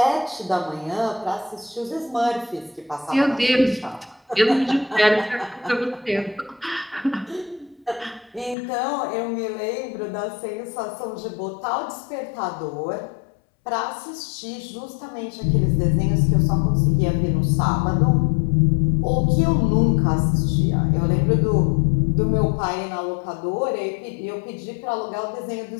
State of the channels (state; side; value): drops out; right; at 8.6 s